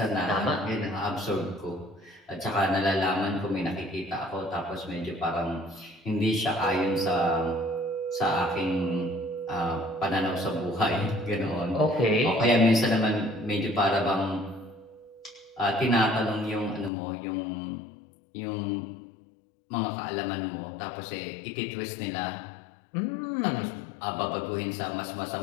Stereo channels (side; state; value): right; drops out; at 16.9 s